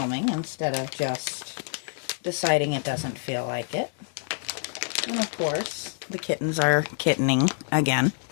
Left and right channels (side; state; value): right; silent; digital silence